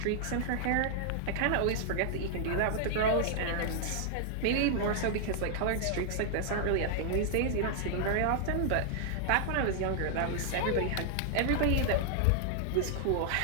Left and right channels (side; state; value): both; different; correlation -0.01